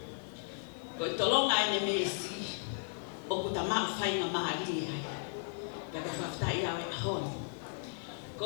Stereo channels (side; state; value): right; silent; digital silence